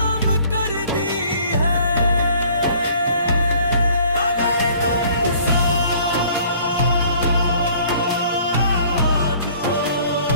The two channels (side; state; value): both; inverted; correlation -0.55